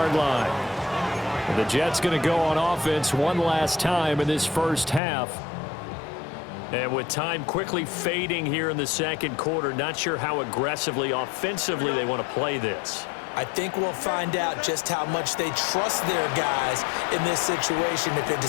line. And the Jets going to go on offense one last time in this first half. And with time quickly fading here in the second quarter, not sure how aggressively, offensively they want to play this. I think we'll find out just how much they trust their guys in this situation if they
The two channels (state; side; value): drops out; right; at 5.0 s